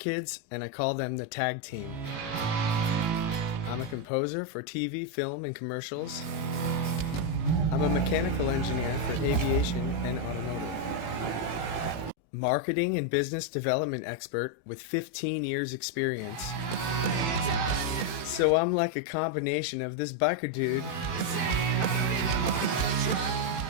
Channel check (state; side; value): late; right; 18 ms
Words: and I call them the Tag Team. I'm a composer for TV, film, and commercials. I'm a mechanical engineer for aviation and automotive. Marketing and business development expert with 15 years experience. So I'm like a combination of this biker dude,